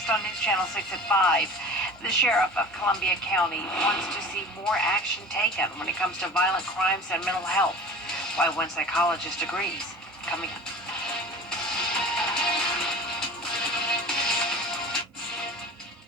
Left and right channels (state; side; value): normal; both; correlation 0.39